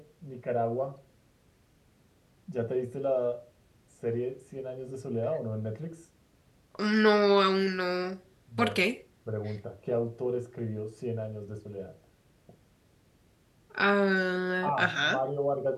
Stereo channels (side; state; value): both; identical; correlation 1.00